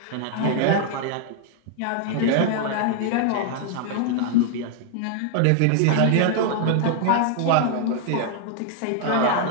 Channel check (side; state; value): both; different; correlation 0.00